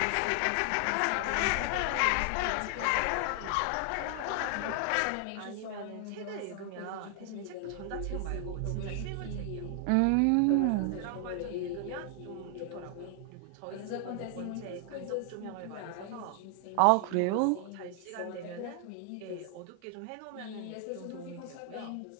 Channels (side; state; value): both; different; correlation 0.00